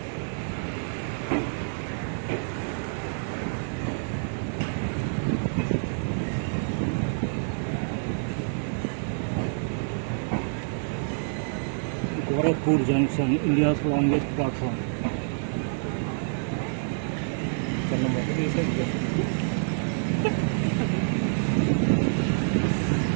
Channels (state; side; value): silent; left; 60 dB below the other